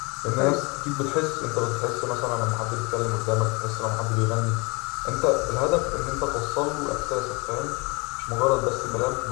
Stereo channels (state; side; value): quieter; right; 28.3 dB